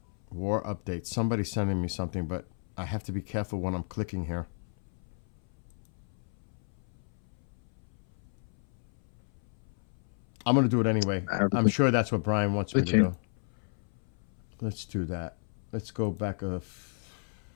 War update. Somebody's sending me something, but I have to be careful when I'm clicking here. I'm going to do it anyway. I'm sure that's what Brian wants me to do. Let's do that. Let's go back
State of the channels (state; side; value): silent; right; 57 dB below the other